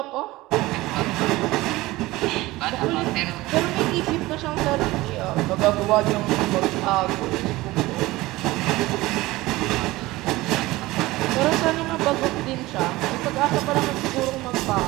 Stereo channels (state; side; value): quieter; left; 19.2 dB